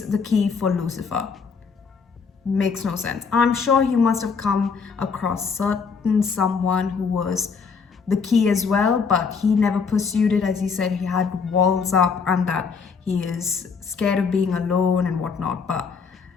the key for Lucifer makes no sense. I'm sure he must have come across someone who was the key as well, but he never pursued it. As he said, he had walls up and that he is scared of being alone and whatnot. But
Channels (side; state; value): right; quieter; 5.5 dB